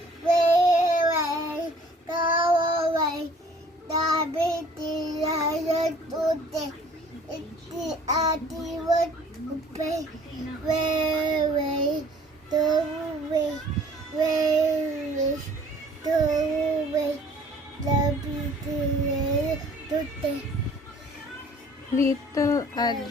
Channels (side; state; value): both; normal; correlation 0.54